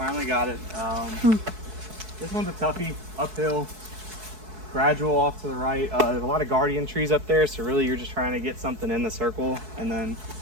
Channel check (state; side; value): late; left; 4.6 ms